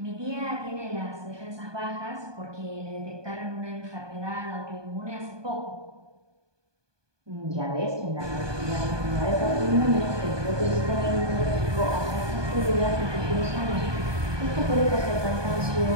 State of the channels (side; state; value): left; late; 1.2 ms